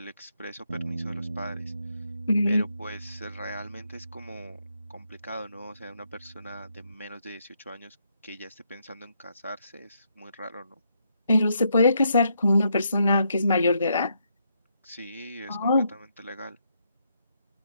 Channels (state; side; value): inverted; both; correlation -0.76